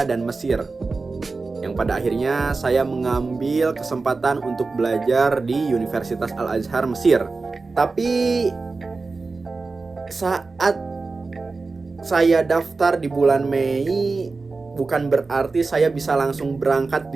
dan Mesir. Yang pada akhirnya saya mengambil kesempatan untuk belajar di Universitas Al-Azhar Mesir. Tapi saat saya daftar di bulan Mei, bukan berarti saya bisa langsung berangkat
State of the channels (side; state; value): left; quieter; 3.9 dB